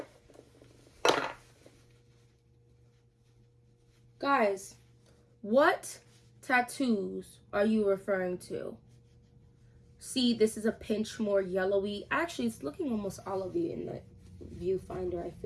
Guys, what tattoos are you referring to? See, this is a pinch more yellowy. Actually, it's looking almost olivey in the viewfinder, I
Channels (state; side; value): identical; both; correlation 1.00